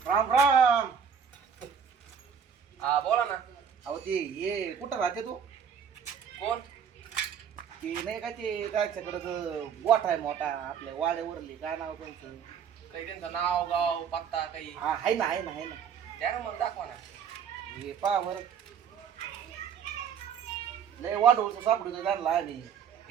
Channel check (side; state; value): left; quieter; 7.4 dB